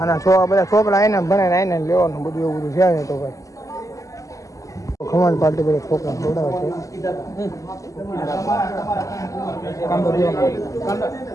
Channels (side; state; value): right; late; 0.16 ms